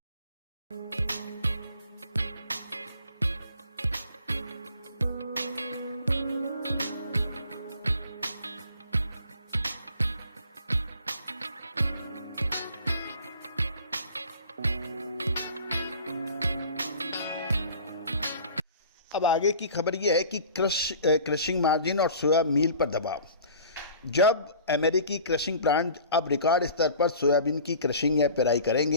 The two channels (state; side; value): inverted; both; correlation -0.45